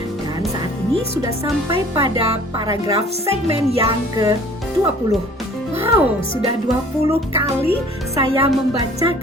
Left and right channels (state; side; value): normal; both; correlation 0.51